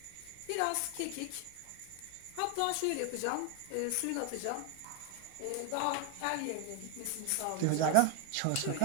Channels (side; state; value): both; different; correlation 0.01